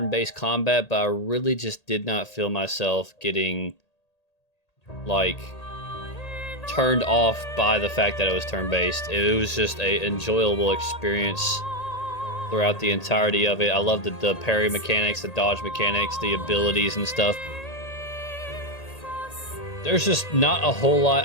combat, but I really just did not feel myself getting like turned off by the fact that it was turn-based. It was just a enjoyable experience throughout the entirety of it. I love the parry mechanics, the dodge mechanics, the abilities and stuff. There's just not a whole lot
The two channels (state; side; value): late; right; 1.8 ms